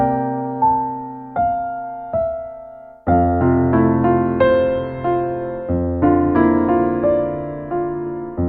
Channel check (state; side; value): identical; both; correlation 1.00